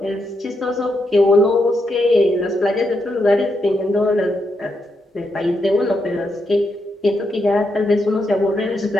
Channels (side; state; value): both; normal; correlation 0.82